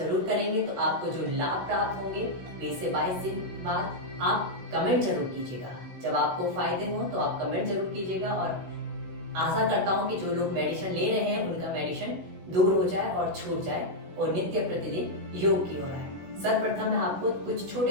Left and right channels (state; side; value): late; left; 16 ms